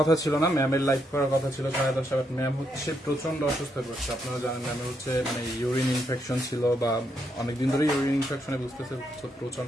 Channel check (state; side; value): normal; both; correlation 0.78